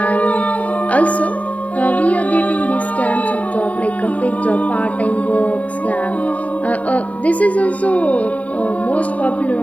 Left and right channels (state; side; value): late; right; 0.069 ms